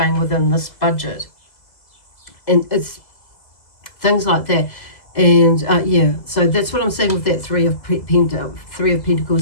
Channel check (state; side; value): late; right; 2.0 ms